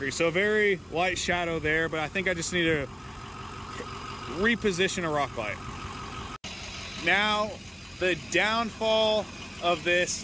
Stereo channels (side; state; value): both; identical; correlation 1.00